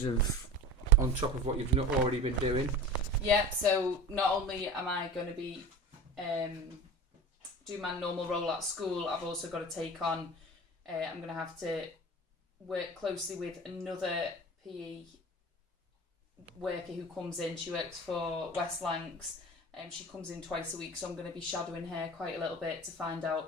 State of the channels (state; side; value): normal; both; correlation 0.34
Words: of on top of what you've not already been doing? Yeah. So not only am I going to be do my normal role at school, I've also got to take on. I'm going to have to work closely with another PE worker who comes in. She works for West Lancs. She comes in twice a week, so I'm going to be shadowing her quite a little bit to find